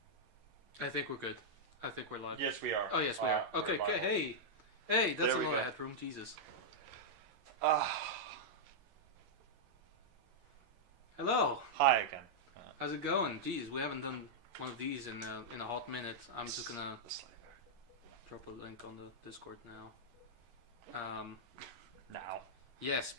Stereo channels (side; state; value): left; late; 10 ms